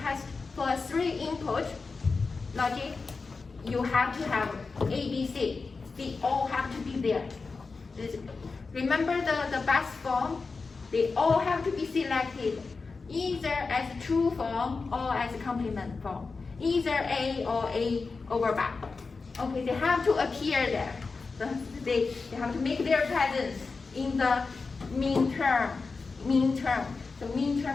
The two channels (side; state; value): right; quieter; 4.3 dB